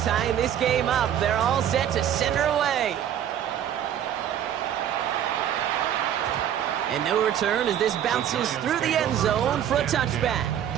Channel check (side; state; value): left; quieter; 10.0 dB